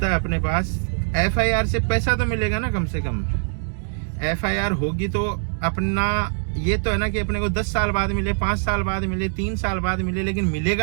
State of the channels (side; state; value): left; silent; digital silence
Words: है अपने पास, FIR से पैसा तो मिलेगा ना कम से कम। FIR होगी तो अपना ये तो है ना कि अपने को 10 साल बाद मिले, 5 साल बाद मिले, 3 साल बाद मिले, लेकिन